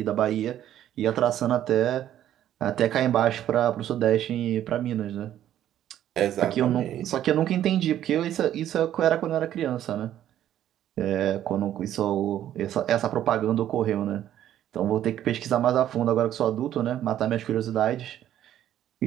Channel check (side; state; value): left; quieter; 11.6 dB